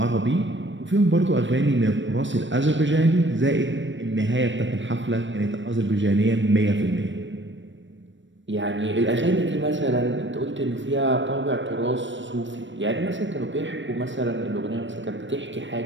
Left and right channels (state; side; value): late; left; 0.54 ms